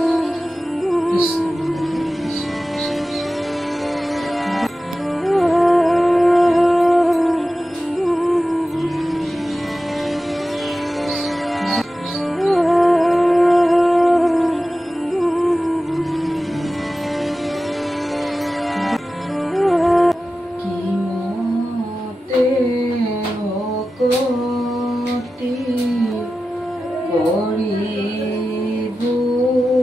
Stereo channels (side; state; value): both; normal; correlation 0.94